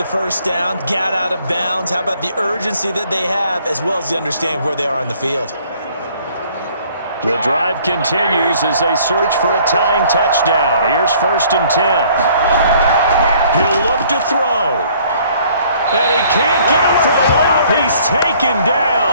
first down, got out of bounds. How about the urgency that they have, as well as the understanding where they are on the field? The drive continues as they search for a tying touchdown. Here's 1st and 10. He'll look to throw. And he can't get a throw off. He's taken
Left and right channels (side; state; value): both; inverted; correlation -0.58